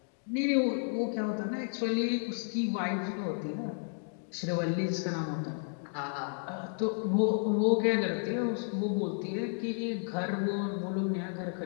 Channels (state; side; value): silent; right; 56 dB below the other